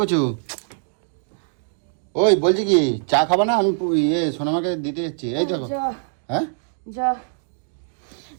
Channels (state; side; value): silent; left; digital silence